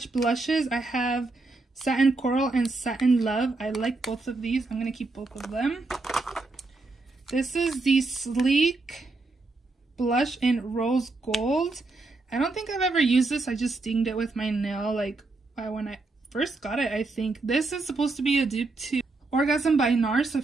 blushes. I have Satin Coral and Satin Love. I like both of these. I'm going to keep both of them. This is the Sleek blush in Rose Gold. I don't think I've ever used this. I just dinged it with my nail like when I first got it, I think. This is supposed to be a dupe to Orgasm by NARS. So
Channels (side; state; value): left; quieter; 3.4 dB